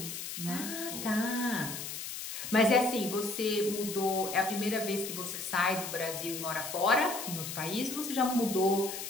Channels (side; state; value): left; noise; hiss, 7 dB below the sound